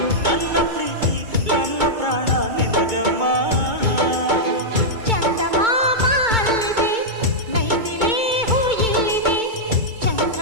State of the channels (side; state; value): left; late; 2.2 ms